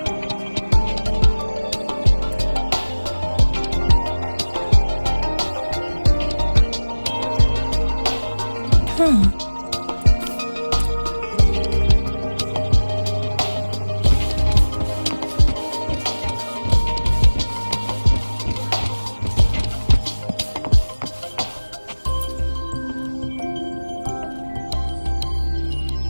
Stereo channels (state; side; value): inverted; both; correlation -1.00